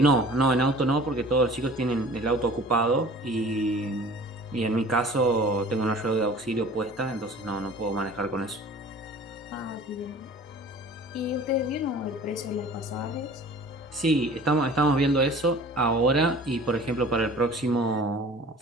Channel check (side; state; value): both; normal; correlation 0.46